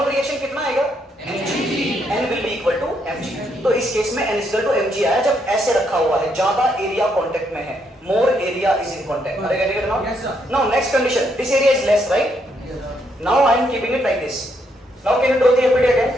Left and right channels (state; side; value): normal; both; correlation 0.75